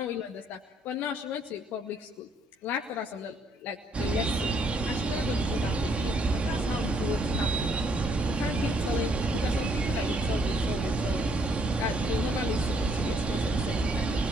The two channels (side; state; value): both; normal; correlation 0.68